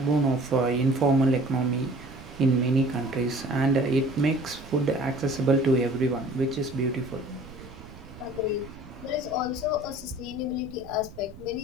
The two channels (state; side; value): noise; right; rumble, 17 dB below the sound